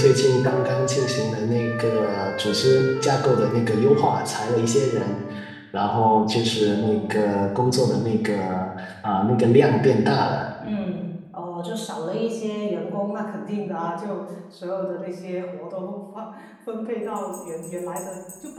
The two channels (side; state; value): both; identical; correlation 1.00